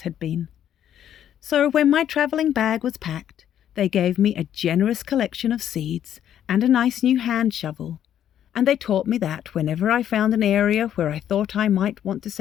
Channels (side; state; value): right; quieter; 10.3 dB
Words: had been. So when my travelling bag was packed, they gave me a generous collection of seeds and a nice new hand shovel, and they taught me that whenever I found an area where I thought I might want to